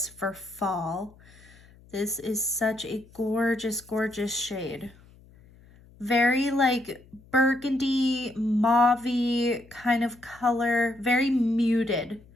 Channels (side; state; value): left; noise; hum, 25 dB below the sound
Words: for fall. This is such a gorgeous shade. Very like burgundy, mauve kind of color, very muted.